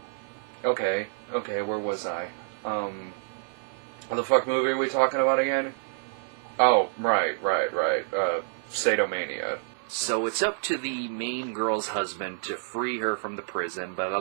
Okay, where was I? What the fuck movie are we talking about again? Oh, right, Sadomania. So it's up to the main girl's husband to free her from the prison, but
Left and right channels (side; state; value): left; silent; 59 dB below the other